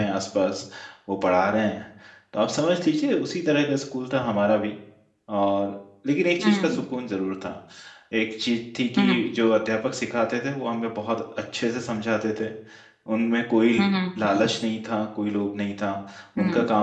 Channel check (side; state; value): both; identical; correlation 1.00